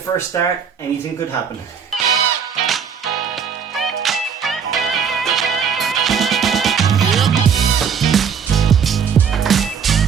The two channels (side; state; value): left; quieter; 6.9 dB